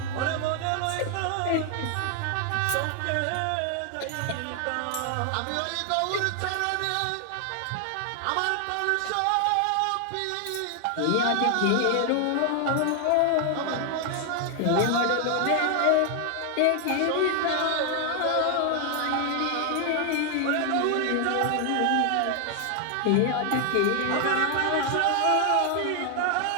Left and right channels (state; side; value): different; both; correlation 0.00